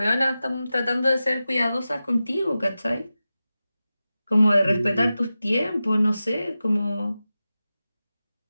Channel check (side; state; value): both; inverted; correlation -0.94